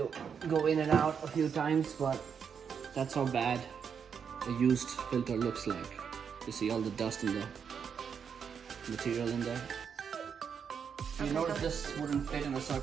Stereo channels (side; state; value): left; quieter; 7.0 dB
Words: go in and out a few times, but that's how bad a used filter looks like. You see all the dust in the material in there. You notice this wouldn't fit in a